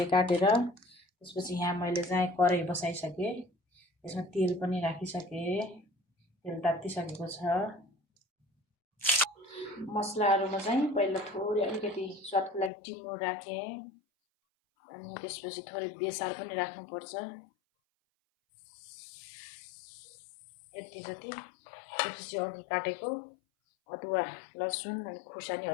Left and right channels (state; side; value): drops out; right; at 12.7 s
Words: काटेर, त्यसपछि यहाँ मैले चाहिँ कराही बसाइसकेँ। यसमा तेल पनि राखिसकेँ। तेल तात्तिसकेको छ। मसलाहरूमा चाहिँ पहिला थोरै अलिकति स्वादको लागि टिमुर राखेँ, अनि त्यसपछि थोरै बेसार पनि राख्नुपर्छ, यति जति। त्यसपछि अघि काटेको अदुवा, लसुन अनि खुर्सानी,